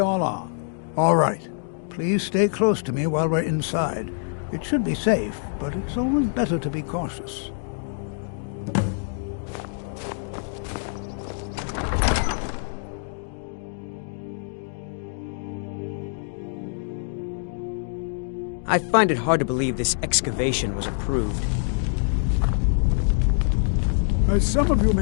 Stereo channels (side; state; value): right; silent; digital silence